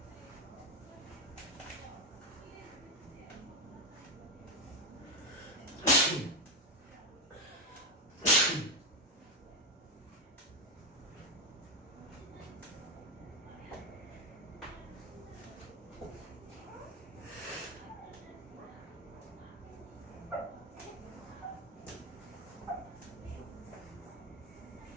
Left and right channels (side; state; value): both; normal; correlation 0.10